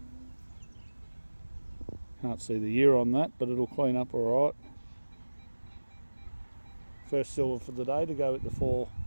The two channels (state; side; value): inverted; both; correlation -1.00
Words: Can't see the year on that, but it'll clean up alright. First silver for the day to go with the 4